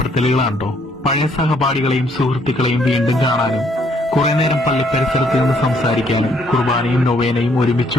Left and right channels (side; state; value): both; normal; correlation 0.67